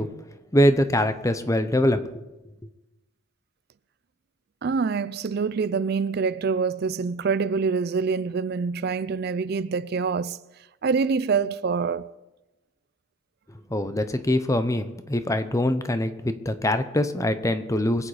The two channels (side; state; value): both; normal; correlation 0.53